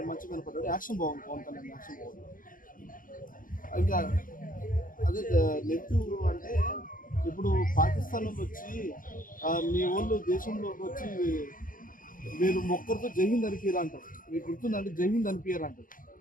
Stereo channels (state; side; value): late; right; 0.40 ms